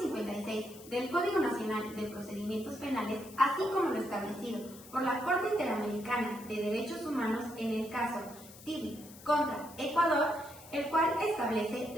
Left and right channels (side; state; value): left; noise; hiss, 19 dB below the sound